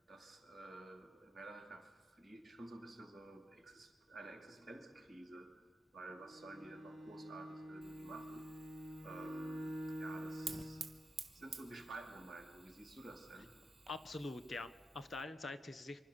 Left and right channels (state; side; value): normal; both; correlation 0.87